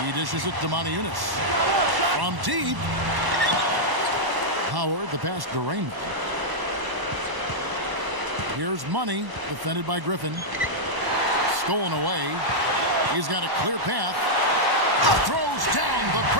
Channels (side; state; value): left; late; 1.1 ms